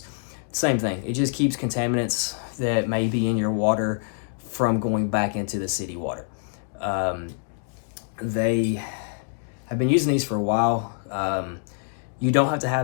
Same thing. It just keeps contaminants that may be in your water from going back into the city water. They have been using these for a while. You don't have to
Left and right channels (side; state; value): right; silent; digital silence